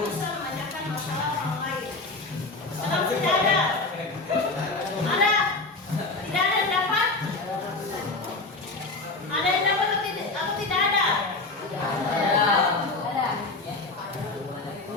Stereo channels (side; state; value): right; quieter; 3.4 dB